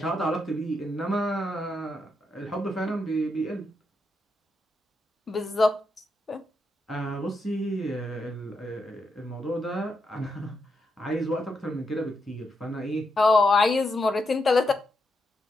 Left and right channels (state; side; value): normal; both; correlation 0.82